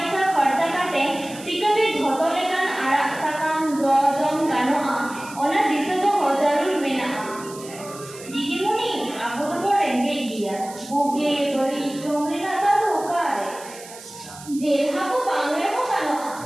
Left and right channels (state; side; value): noise; right; hiss, 16 dB below the sound